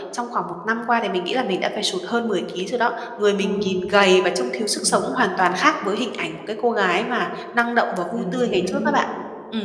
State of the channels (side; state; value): both; identical; correlation 1.00